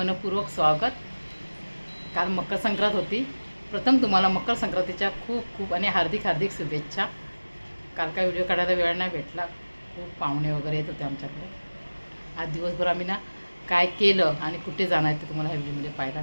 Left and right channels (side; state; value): both; inverted; correlation -1.00